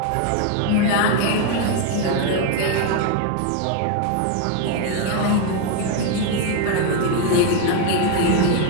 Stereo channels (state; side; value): different; both; correlation 0.01